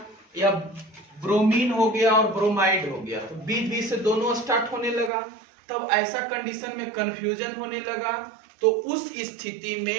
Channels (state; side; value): drops out; left; at 5.1 s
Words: या ब्रोमीन हो गया और ब्रोमाइड हो गया, तो बीच बीच से दोनों स्टार्ट होने लगा। तब ऐसा कंडीशन में कंफ्यूजन होने लगा। तो उस स्थिति